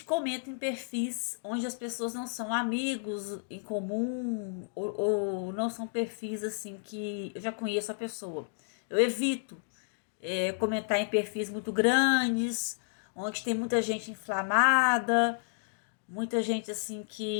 comento em perfis onde as pessoas não são amigos em comum ou não são perfis assim que eu já conheço a pessoa. Eu evito comentar em perfis muito grandes, onde tem muita gente inflamada, muita gente assim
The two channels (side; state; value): right; silent; digital silence